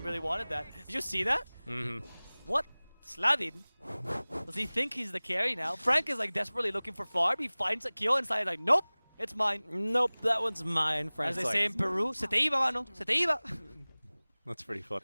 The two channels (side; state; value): both; inverted; correlation -1.00